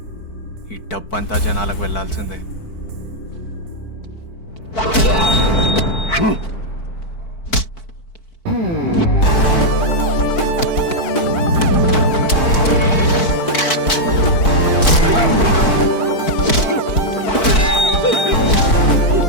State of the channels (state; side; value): late; right; 4.5 ms